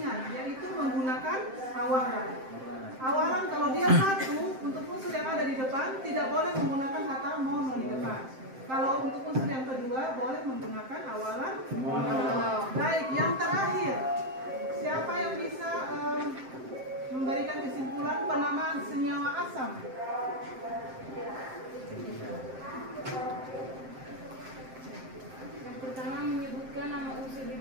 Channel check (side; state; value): left; late; 7.7 ms